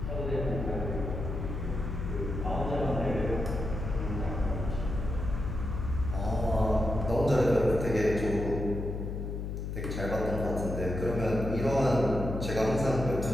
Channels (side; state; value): left; noise; hum, 4 dB below the sound